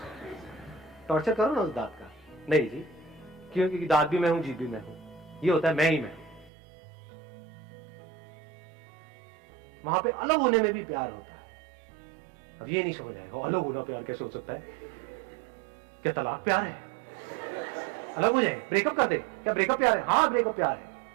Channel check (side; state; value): left; drops out; at 6.5 s